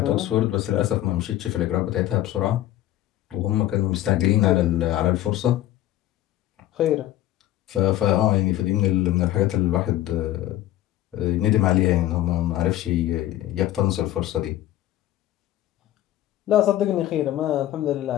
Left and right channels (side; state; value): right; quieter; 13.9 dB